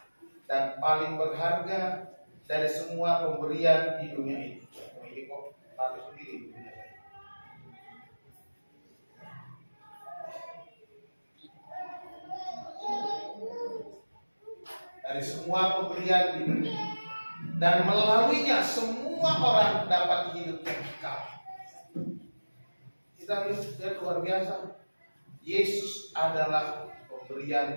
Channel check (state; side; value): inverted; both; correlation -1.00